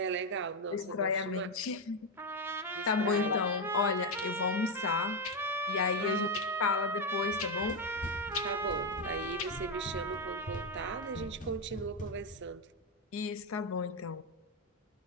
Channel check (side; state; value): both; normal; correlation 0.06